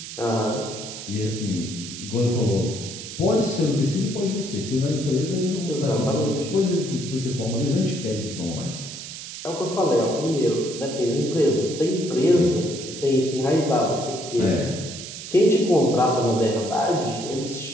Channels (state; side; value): noise; right; hiss, 10 dB below the sound